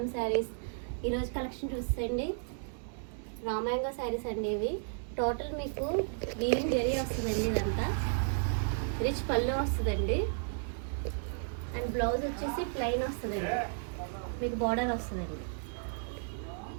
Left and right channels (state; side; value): silent; left; 55 dB below the other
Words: saris. ఈరోజు collection చూసేయండి. Raw mango saris అండి. ఇవి టోటల్ మీకు వీవింగ్ జరీ వస్తుందండి. ఇదంతా రిచ్ పళ్ళు వస్తుందండి. అండ్ బ్లౌజ్ వచ్చేసి ప్లెయిన్ వస్తుందండి. మీకు బార్డర్ వస్తుందండి.